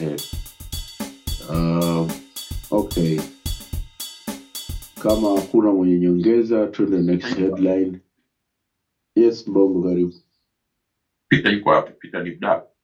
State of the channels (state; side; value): identical; both; correlation 1.00